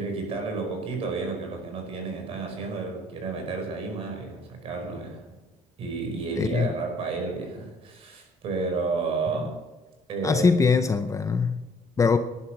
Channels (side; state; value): both; normal; correlation 0.61